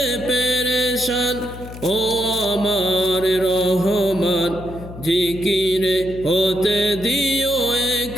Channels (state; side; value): noise; left; hum, 13 dB below the sound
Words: পেরেশান ও আমার রহমান। জিকিরে হতে দিও